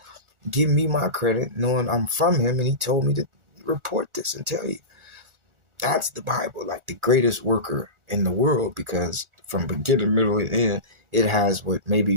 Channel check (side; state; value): left; late; 1.4 ms